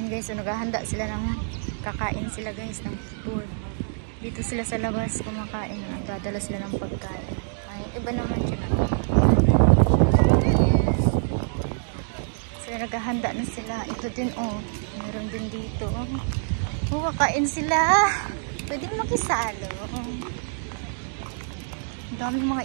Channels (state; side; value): silent; left; digital silence